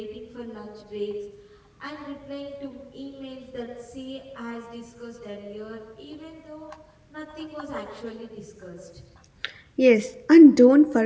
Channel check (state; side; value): identical; both; correlation 1.00